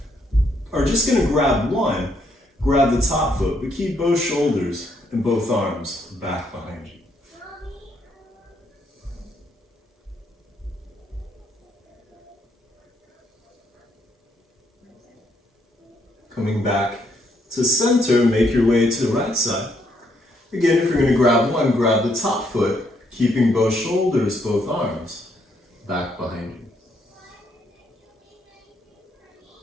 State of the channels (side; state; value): both; normal; correlation 0.72